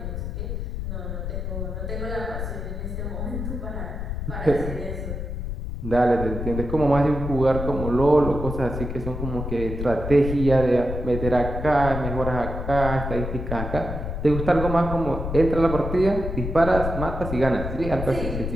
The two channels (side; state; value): left; noise; rumble, 5 dB below the sound